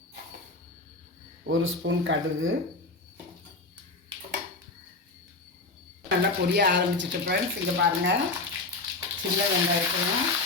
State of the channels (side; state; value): right; quieter; 3.4 dB